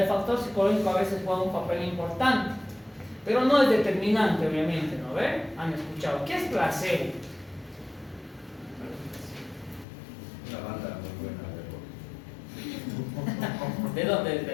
factor psicológico a veces juega un papel importante. Pero no es determinante, obviamente, ¿no ven? Han escuchado. ¿Qué es placebo? Una banda muy buena. ¿De dónde?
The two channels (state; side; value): drops out; right; at 9.9 s